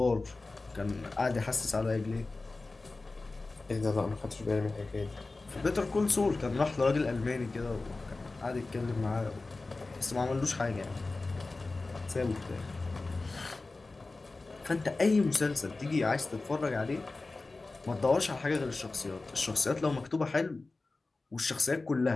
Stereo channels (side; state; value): right; quieter; 3.4 dB